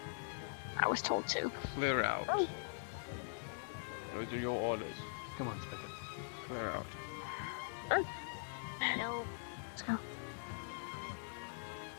I was told to. Clear out. Oh. Those are your orders. Come on, Spigot. Clear out. No. Let's go.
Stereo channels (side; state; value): right; silent; digital silence